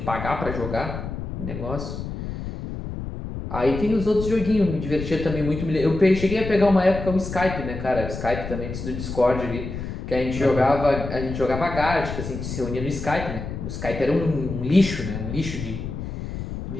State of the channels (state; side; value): noise; left; rumble, 7 dB below the sound